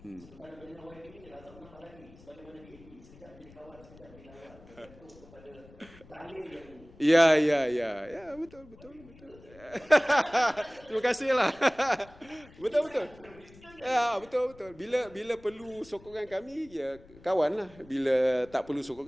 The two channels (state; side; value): noise; left; rumble, 23 dB below the sound